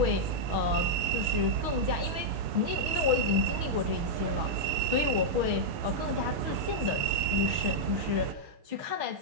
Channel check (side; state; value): left; late; 6.3 ms